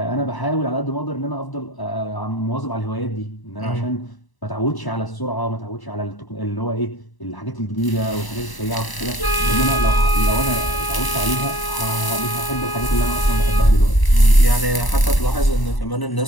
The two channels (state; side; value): late; right; 1.0 ms